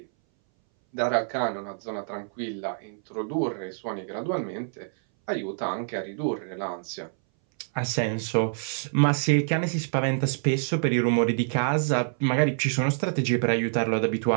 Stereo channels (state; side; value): silent; left; 60 dB below the other